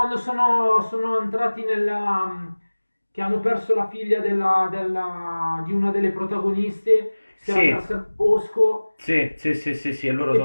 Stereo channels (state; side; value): inverted; both; correlation -1.00